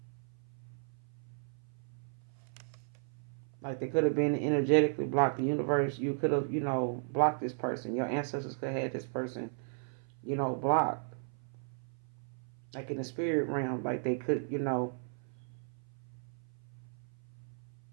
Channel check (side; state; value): left; silent; 54 dB below the other